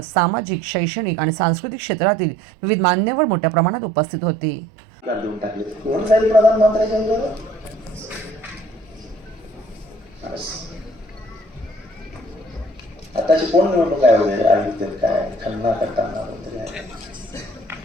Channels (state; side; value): normal; both; correlation 0.56